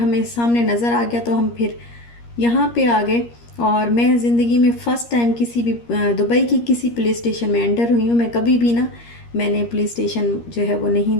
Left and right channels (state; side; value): late; right; 13 ms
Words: सामने नज़र आ गया, तो हम फिर यहाँ पे आ गए। और मैं ज़िंदगी में फ़र्स्ट टाइम किसी भी दुबई की किसी पुलिस स्टेशन में एंटर हुई हूँ। मैं कभी भी ना, मैंने पुलिस स्टेशन जो है वो नहीं